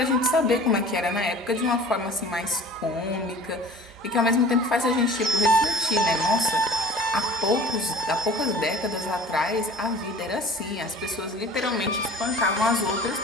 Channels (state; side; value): normal; both; correlation 0.45